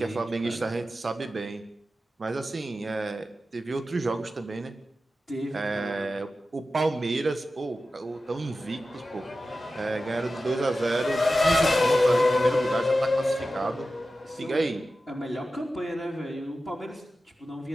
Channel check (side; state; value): both; normal; correlation 0.93